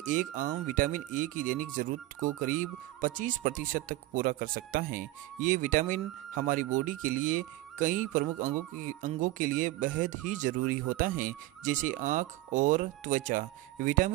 एक आम विटामिन ए की दैनिक जरूरत को करीब 25% तक पूरा कर सकता है। ये विटामिन हमारी बॉडी के लिए कई प्रमुख अंगों के लिए बेहद ही जरूरी होता है, जैसे आँख और त्वचा।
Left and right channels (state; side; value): quieter; left; 17.4 dB